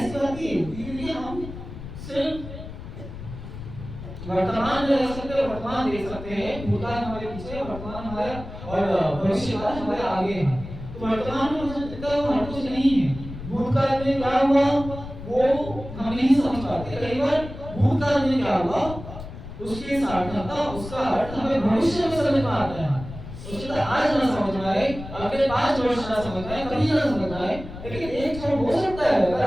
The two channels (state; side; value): noise; left; rumble, 12 dB below the sound